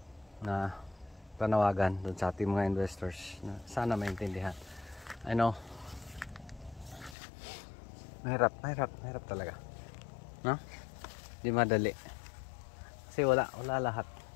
na panawagan doon sa ating mga investors na sana maintindihan. I know Mahirap talaga. No? Di madali. Kasi wala lahat.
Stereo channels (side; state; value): right; drops out; at 7.2 s